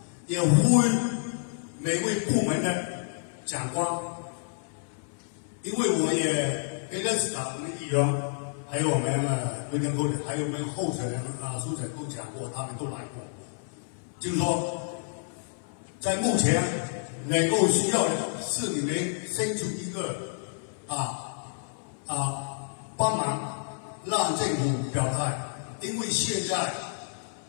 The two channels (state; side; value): silent; right; 58 dB below the other